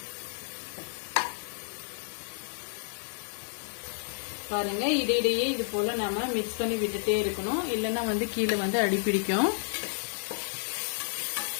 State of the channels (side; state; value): right; silent; 57 dB below the other